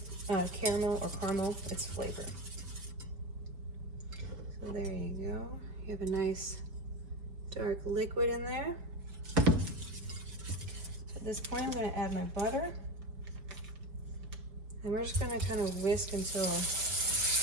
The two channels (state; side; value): late; left; 5.0 ms